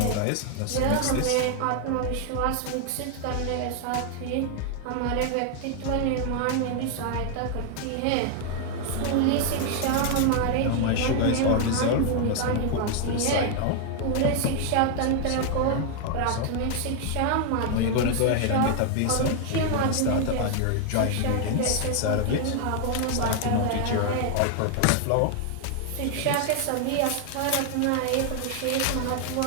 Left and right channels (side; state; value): both; different; correlation 0.00